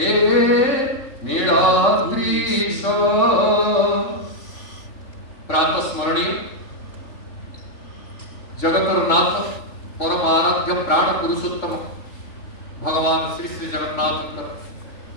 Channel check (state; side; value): late; right; 3.6 ms